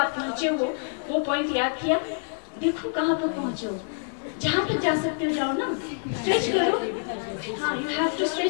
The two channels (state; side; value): silent; right; digital silence